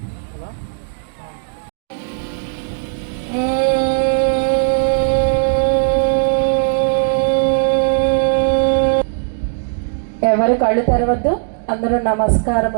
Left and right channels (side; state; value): left; silent; digital silence